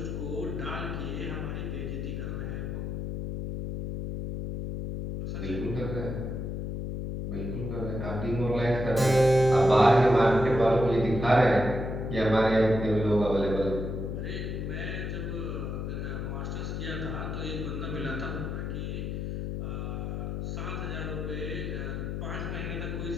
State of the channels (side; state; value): left; noise; hum, 4 dB below the sound